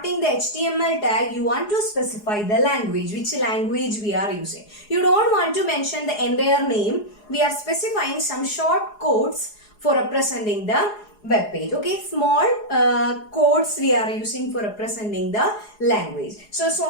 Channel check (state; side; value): late; right; 4.8 ms